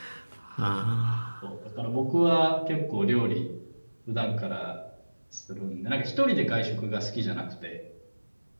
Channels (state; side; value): inverted; both; correlation -1.00